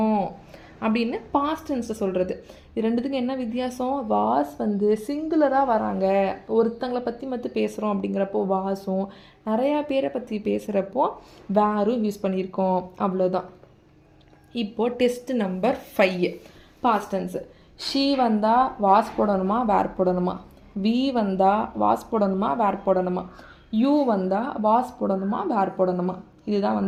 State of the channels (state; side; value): identical; both; correlation 1.00